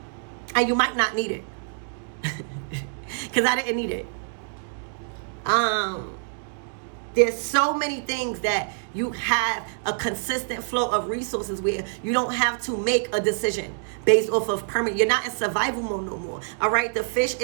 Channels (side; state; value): left; silent; digital silence